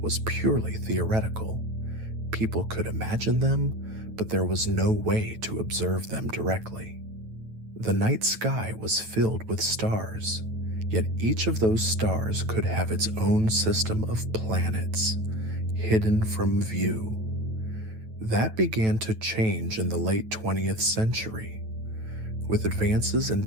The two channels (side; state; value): left; late; 9.2 ms